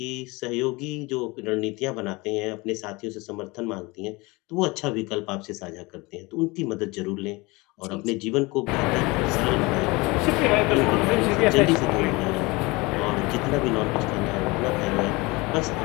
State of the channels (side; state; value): right; quieter; 24.2 dB